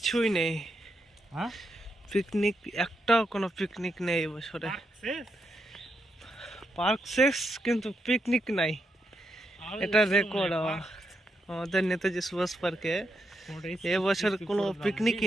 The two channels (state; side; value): normal; both; correlation 0.82